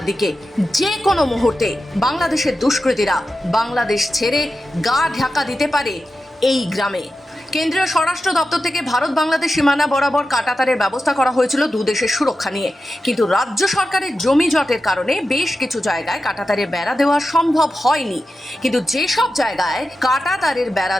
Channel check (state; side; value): normal; both; correlation 0.91